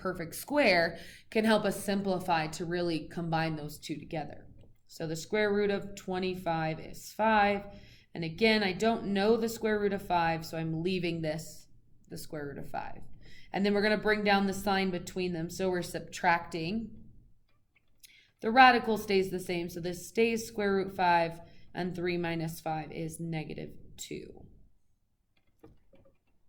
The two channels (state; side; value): identical; both; correlation 1.00